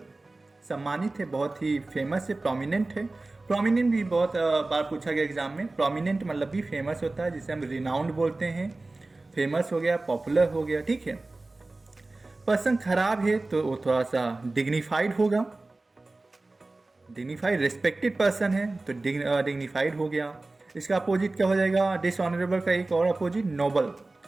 सम्मानित है, बहुत ही फेमस है, प्रोमिनेंट है। प्रोमिनेंट भी बहुत बार पूछा गया एग्जाम में। प्रोमिनेंट मतलब भी फेमस होता है, जिसे हम रिनाउंड बोलते हैं। फेमस हो गया, पॉपुलर हो गया, ठीक है। पर्सन खराब है तो वो थोड़ा सा डिग्निफाइड होगा। डिग्निफाइड रिस्पेक्टेड पर्सन है तो डिग्निफाइड हो गया। इसका अपोजिट क्या हो जाएगा? डिसऑनरेबल का एक और अपोजिट नोबल।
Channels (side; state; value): left; quieter; 3.1 dB